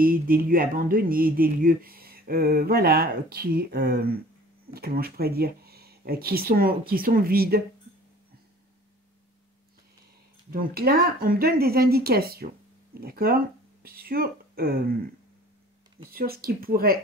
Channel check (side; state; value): both; normal; correlation 0.48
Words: des lieux abandonnés, des lieux, voilà, qui, comment je pourrais dire, qui sont vides. Donc là, on me donne des indications, d'accord, sur ce qui